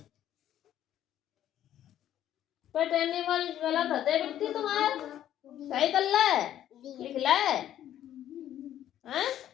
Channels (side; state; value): right; quieter; 11.5 dB